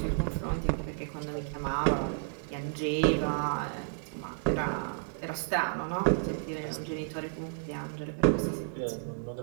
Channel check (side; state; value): left; silent; digital silence